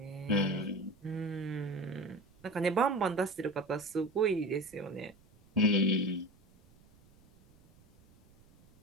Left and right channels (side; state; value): right; noise; rumble, 29 dB below the sound